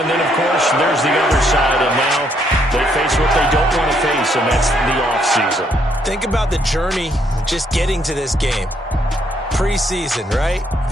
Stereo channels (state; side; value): normal; both; correlation 0.71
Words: then, of course, there's the other side, and now they face what they don't want to face, and that's the offseason. Think about the journey just getting to this game. Preseason, right?